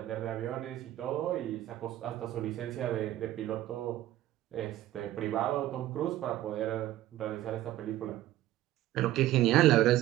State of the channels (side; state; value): left; quieter; 14.3 dB